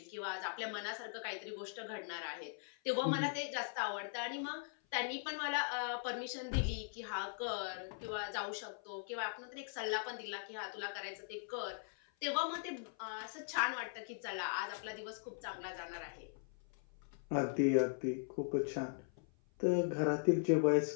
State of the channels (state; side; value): silent; right; 51 dB below the other